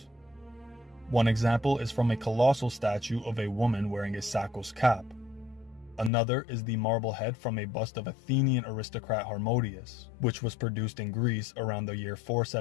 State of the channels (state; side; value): drops out; right; at 6.1 s